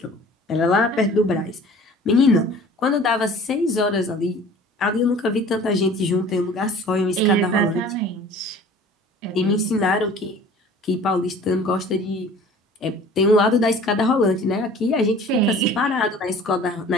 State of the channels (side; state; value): both; normal; correlation 0.46